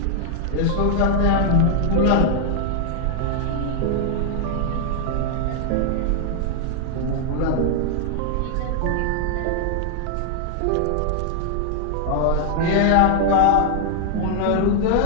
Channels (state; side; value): different; both; correlation 0.00